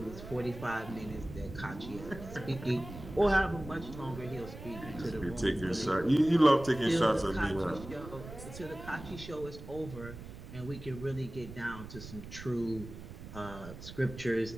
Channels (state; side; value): noise; right; rumble, 13 dB below the sound